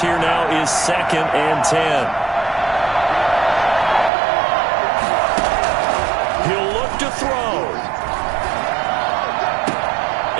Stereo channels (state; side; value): drops out; left; at 4.1 s